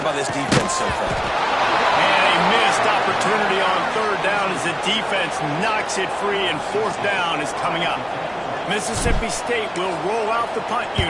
by this defense so far. And a missed opportunity on 3rd down as the defense knocks it free, and 4th down is coming up. Mississippi State will roll out the punt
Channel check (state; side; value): identical; both; correlation 1.00